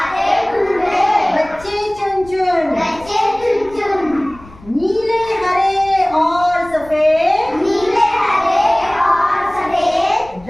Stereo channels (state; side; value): noise; left; rumble, 22 dB below the sound